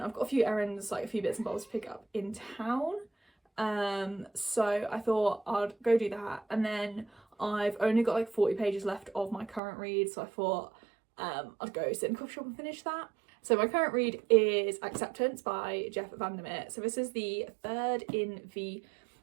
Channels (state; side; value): drops out; left; at 9.6 s